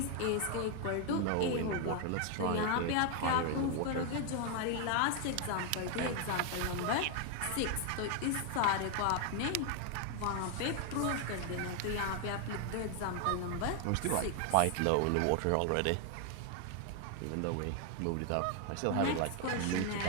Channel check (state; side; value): different; both; correlation 0.00